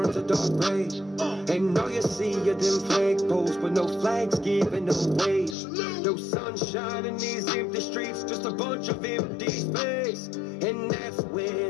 a dark gray, and all you see are them flagpoles with no flags giving away. No sunshine in these empty streets, just a bunch of empty space. And that's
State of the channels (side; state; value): right; drops out; at 5.6 s